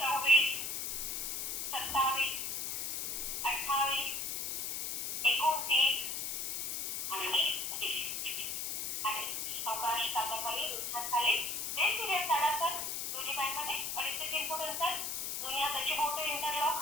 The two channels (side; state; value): left; noise; hiss, 2 dB below the sound